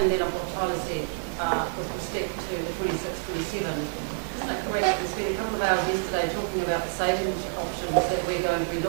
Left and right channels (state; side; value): silent; left; digital silence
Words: then of what Tyler said, with respect to the 26-27, isn't it correct that we spent a couple of hours yesterday talking about the savings options that we're going to be